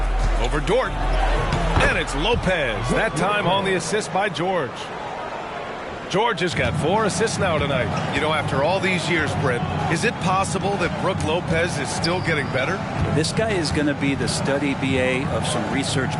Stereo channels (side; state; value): both; identical; correlation 1.00